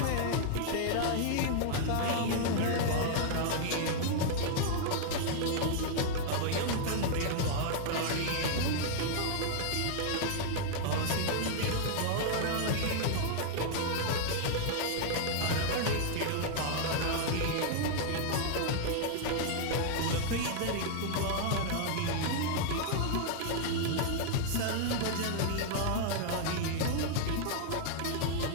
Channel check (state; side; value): different; both; correlation 0.00